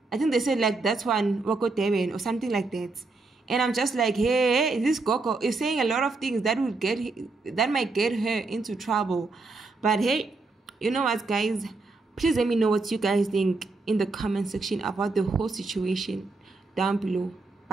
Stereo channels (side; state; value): left; quieter; 3.6 dB